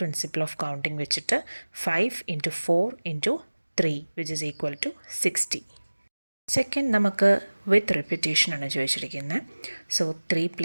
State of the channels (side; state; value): both; inverted; correlation -1.00